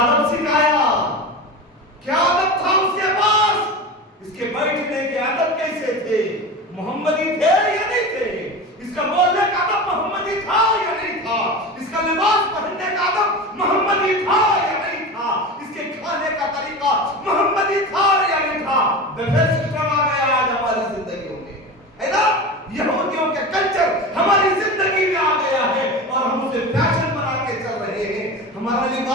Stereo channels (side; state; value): both; normal; correlation 0.28